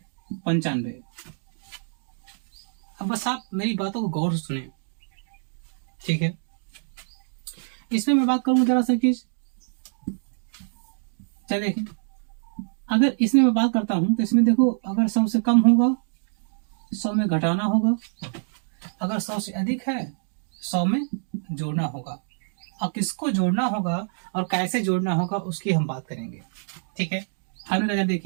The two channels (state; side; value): silent; left; digital silence